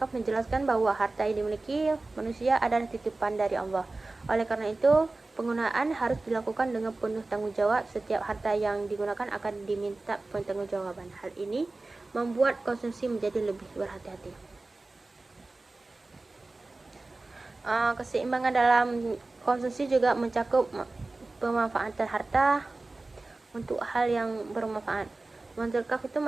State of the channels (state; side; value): quieter; left; 3.2 dB